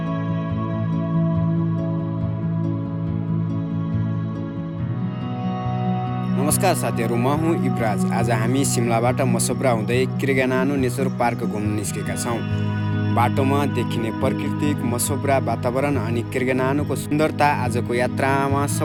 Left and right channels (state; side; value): identical; both; correlation 1.00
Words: नमस्कार साथीहरू, म हुँ इब्राज। आज हामी सिमलाबाट मसोब्रा हुँदै कृगनानो नेचर पार्क घुम्न निस्केका छौँ। बाटोमा देखिने प्राकृतिक मसोब्रा वातावरण अनि कृगनानोको सुन्दरता, आजको यात्रामा